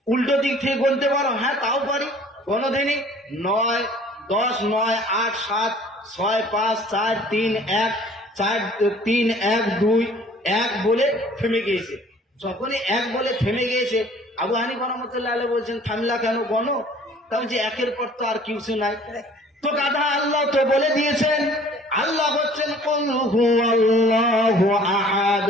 উল্টো দিক থেকে গুনতে পারো? হ্যাঁ তাও পারি। গণধিনী 9 10 9 8 7 6 5 4 3 1 4 3 1 2 1 বলে থেমে গিয়েছে। যখনই 1 বলে থেমে গিয়েছে, আবু হানিফা রাহমাতুল্লাহ আলাইহি বলছেন, থামলা কেন, গণো। তাও যে 1 এর পর তো আর কিছু নাই। তো গাধা, আল্লাহ তো বলে দিয়েছেন, আল্লাহ হচ্ছেন কুল হুয়াল্লাহু আহাদ,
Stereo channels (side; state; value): both; normal; correlation 0.52